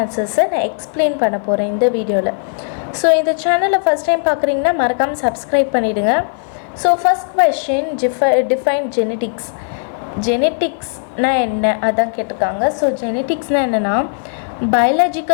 ஆன்சர்ஸை நான் எக்ஸ்பிளைன் பண்ண போகிறேன் இந்த வீடியோவில். ஸோ இந்த சேனலை ஃபஸ்ட் டைம் பார்க்குறீங்கன்னா மறக்காமல் சப்ஸ்கிரைப் பண்ணிவிடுங்க. So first question define genetics. ஜெனட்டிக்ஸ்னால் என்ன அதான் கேட்டிருக்காங்க. ஸோ ஜெனட்டிக்ஸ்னால் என்னென்னா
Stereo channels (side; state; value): right; silent; 57 dB below the other